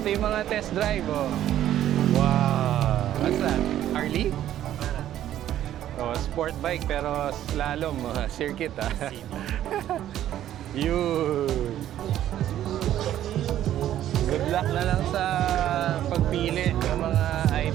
yung mga test drive, oh. Wow! What's that? Harley? Oh, sport bike pero slalom, circuit, ah. Yun! Good luck na lang sa pagpili ng mga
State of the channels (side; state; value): left; quieter; 12.0 dB